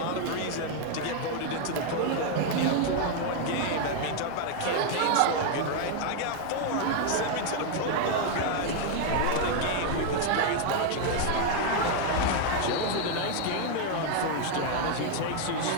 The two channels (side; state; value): both; different; correlation 0.01